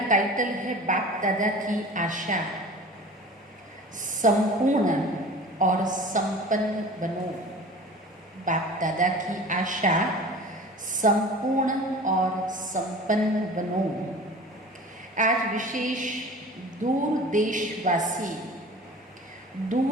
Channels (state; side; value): normal; both; correlation 0.40